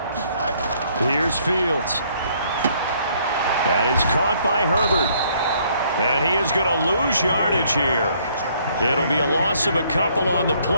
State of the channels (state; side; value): inverted; both; correlation -0.65